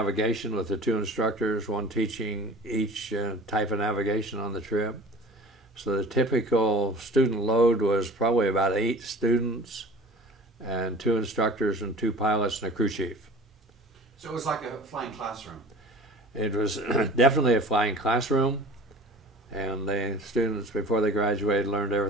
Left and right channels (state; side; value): normal; both; correlation 0.42